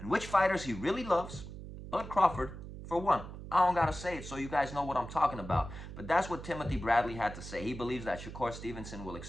which fighters he really loves. Bud Crawford, for one. I don't gotta say it so you guys know what I'm talking about. But that's what Timothy Bradley had to say. He believes that Shakur Stevenson will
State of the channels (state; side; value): noise; right; hum, 11 dB below the sound